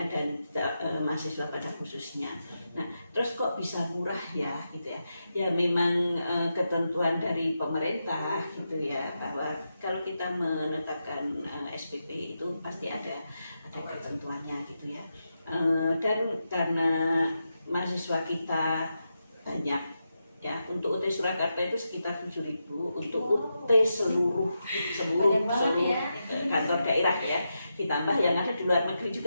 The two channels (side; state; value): both; inverted; correlation -0.87